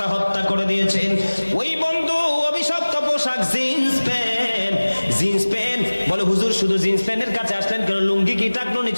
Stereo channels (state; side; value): inverted; both; correlation -1.00